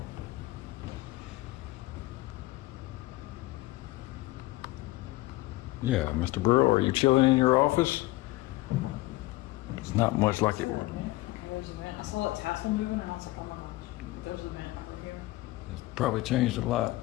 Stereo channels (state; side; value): quieter; right; 19.4 dB